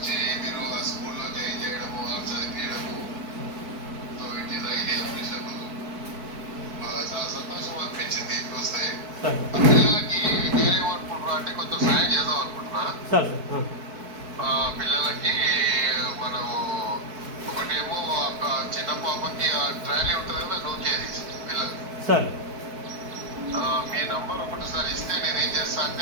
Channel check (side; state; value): left; late; 4.6 ms